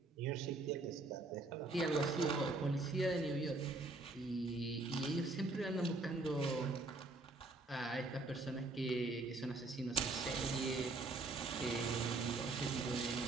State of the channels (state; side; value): quieter; left; 3.2 dB